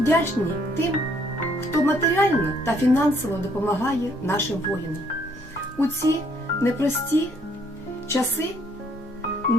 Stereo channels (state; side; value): normal; both; correlation 0.66